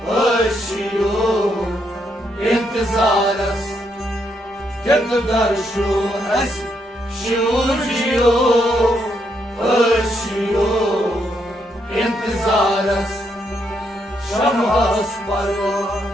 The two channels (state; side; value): normal; both; correlation 0.77